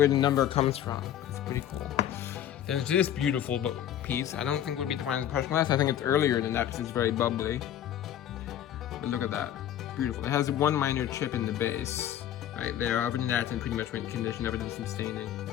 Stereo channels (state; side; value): quieter; right; 10.9 dB